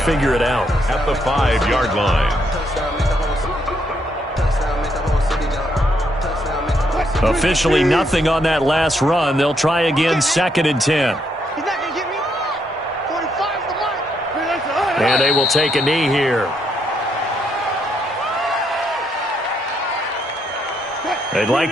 it out. At the 5-yard line. Officially nothing on that last run. They'll try again 2nd and 10. And they will take a knee here. They'd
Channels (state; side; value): normal; both; correlation 0.75